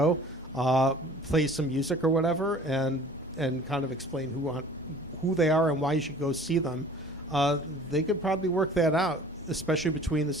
play some music or whatever, and kind of explain who they are and why you should go see them, they could probably work that out, especially between the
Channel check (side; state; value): both; normal; correlation 0.47